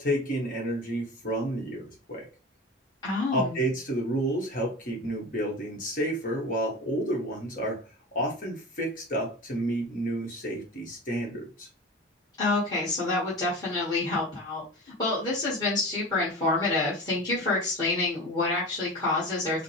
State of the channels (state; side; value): normal; both; correlation 0.32